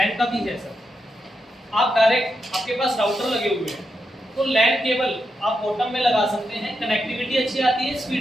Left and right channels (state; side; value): normal; both; correlation 0.85